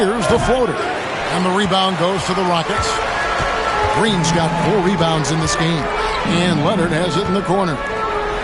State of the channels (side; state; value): both; identical; correlation 1.00